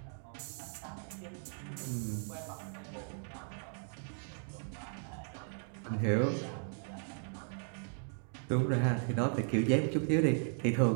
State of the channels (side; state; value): left; silent; 53 dB below the other